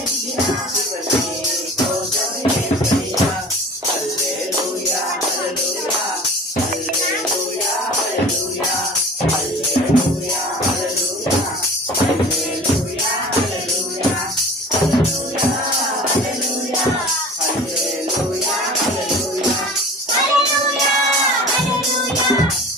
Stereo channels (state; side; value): normal; both; correlation 0.41